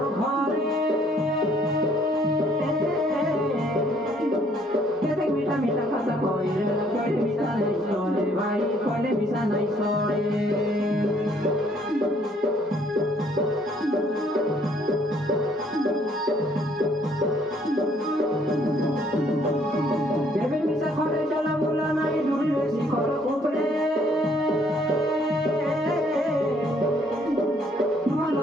ঘরে কেতে মিঠা মিঠা কথা কইরে কইলে মিশা নাই সরে ভাই কইলে মিশা নাই সরে বেবি মিশা ঘরে চলা ভুলা নাই ডুরি শিখর উপরে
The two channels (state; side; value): normal; both; correlation 0.64